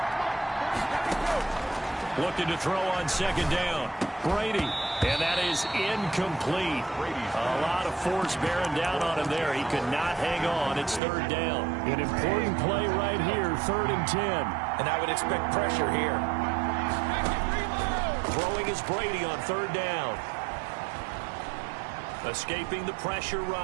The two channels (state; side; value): drops out; left; at 11.0 s